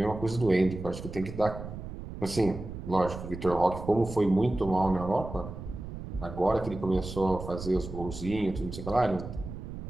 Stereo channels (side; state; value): right; noise; rumble, 10 dB below the sound